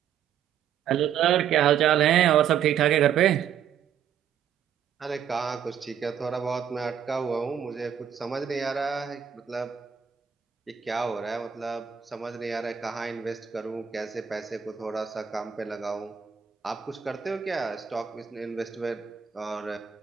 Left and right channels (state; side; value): quieter; left; 8.5 dB